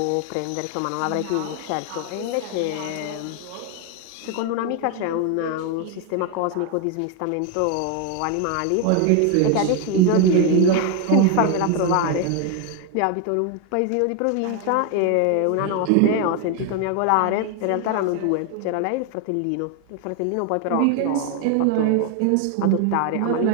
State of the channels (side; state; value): both; different; correlation 0.01